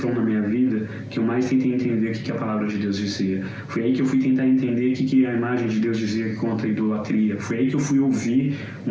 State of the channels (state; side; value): identical; both; correlation 1.00